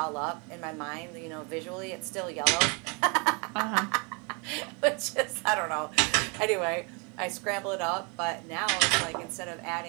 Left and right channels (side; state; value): left; quieter; 32.7 dB